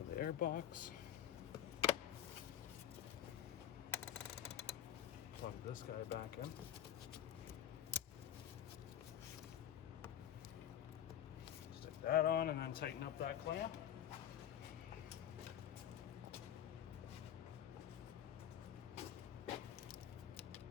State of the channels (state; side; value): quieter; right; 10.4 dB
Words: the air box. Plug this guy back in. Stick that on and then tighten up that clamp.